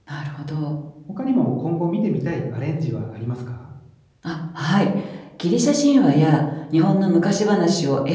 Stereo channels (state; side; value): identical; both; correlation 1.00